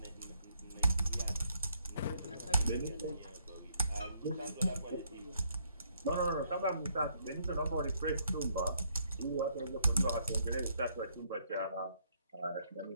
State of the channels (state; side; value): inverted; both; correlation -0.70